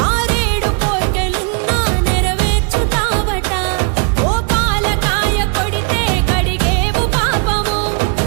ఆరేడు కోర్కెలున్నా నెరవేర్చుతావట. ఓ పాలకాయ కొడితే కడిగేవు పాపము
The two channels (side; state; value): left; quieter; 37.0 dB